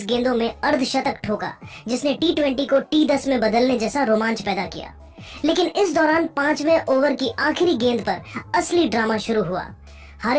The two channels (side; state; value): both; identical; correlation 1.00